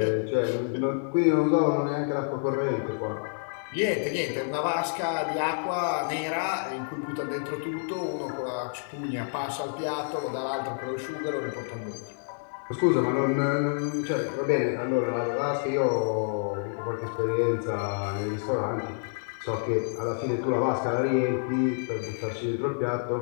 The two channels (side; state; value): right; silent; digital silence